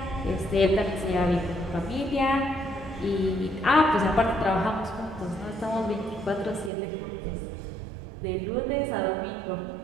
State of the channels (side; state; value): left; drops out; at 6.7 s